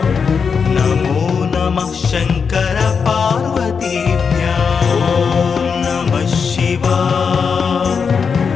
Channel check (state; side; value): quieter; right; 5.9 dB